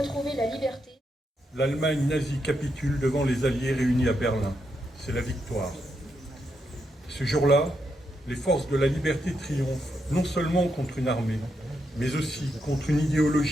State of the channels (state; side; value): normal; both; correlation 0.82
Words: la liberté. L'Allemagne nazie capitule devant les Alliés réunis à Berlin. C'est la victoire. Ce jour-là, les forces de la liberté triomphent, non seulement contre une armée, mais aussi contre une